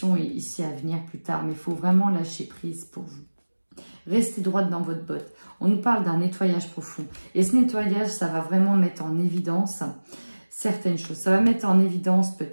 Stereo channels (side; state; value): both; inverted; correlation -1.00